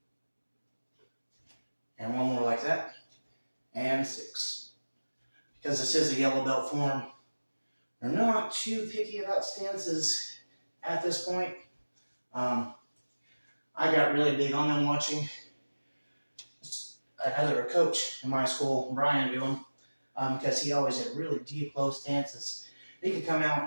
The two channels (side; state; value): both; inverted; correlation -1.00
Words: And 1 more like that. And 6. Because this is a yellow belt form, they're not too picky about stances at this point. I got really big on them watching another coach in my school, Brian, do them, because he always had really deep, low stances. He could come out